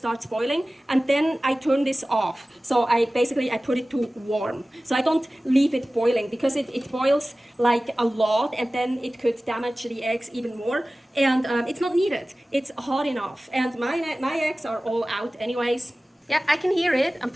boiling, and then I turn this off. So I put it to warm. So I don't leave it boiling because it boils like a lot, and then it could damage the eggs even more. And it's not needed. It's hot enough. And my eggs are all out anyways. Yeah, I can hear it. I'm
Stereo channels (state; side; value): normal; both; correlation 0.97